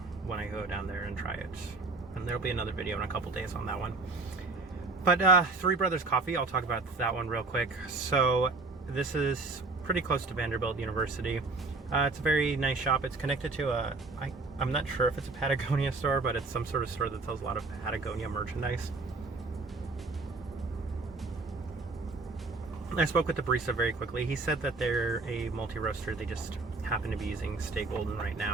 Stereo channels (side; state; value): left; quieter; 3.6 dB